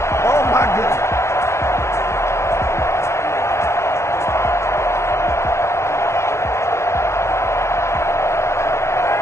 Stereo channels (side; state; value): right; late; 0.13 ms